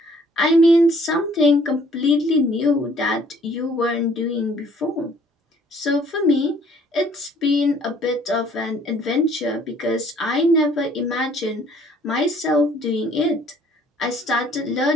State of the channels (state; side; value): normal; both; correlation 0.59